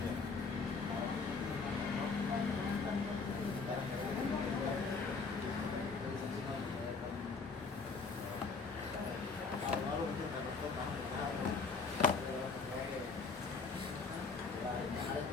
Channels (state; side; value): quieter; right; 4.4 dB